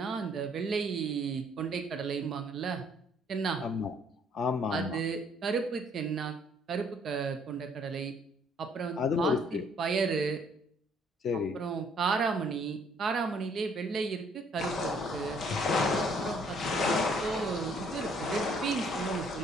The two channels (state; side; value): normal; both; correlation 0.63